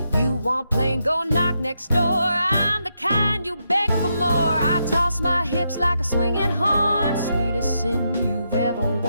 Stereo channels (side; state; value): both; inverted; correlation -0.82